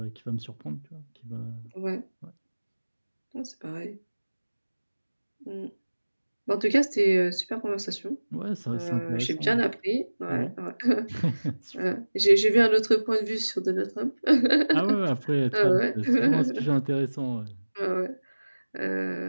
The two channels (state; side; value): inverted; both; correlation -1.00